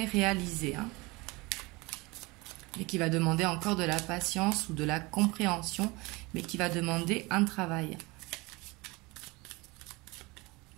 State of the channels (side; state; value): left; quieter; 24.3 dB